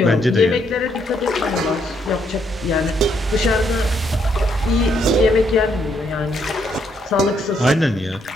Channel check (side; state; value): both; normal; correlation 0.73